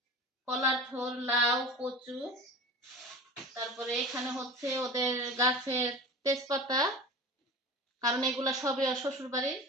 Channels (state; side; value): normal; both; correlation 0.34